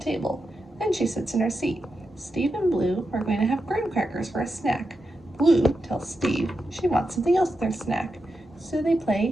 Then she sits in her seat. Steve and Blue are going to have graham crackers for a snack. Blue tells Steve she wants something else with their snack. So they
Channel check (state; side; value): normal; both; correlation 0.88